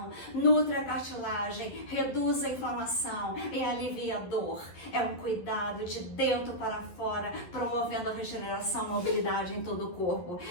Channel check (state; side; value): late; right; 11 ms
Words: nutre a cartilagem, reduz a inflamação e alivia a dor. É um cuidado de dentro para fora, promovendo a regeneração e mobilidade em todo o corpo.